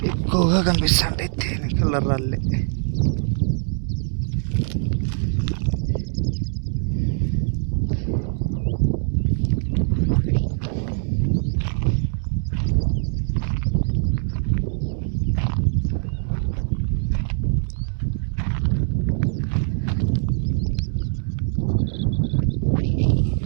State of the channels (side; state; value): left; silent; digital silence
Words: ఎక్కువగా కనిపిస్తుంటాయి. తేనె కలర్ రాళ్ళే.